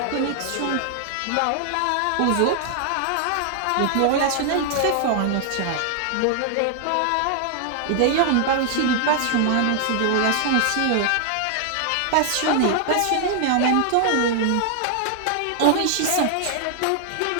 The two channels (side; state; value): both; different; correlation 0.00